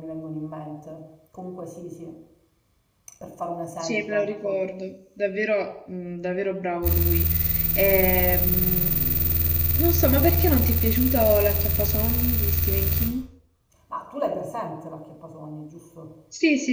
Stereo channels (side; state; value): both; identical; correlation 1.00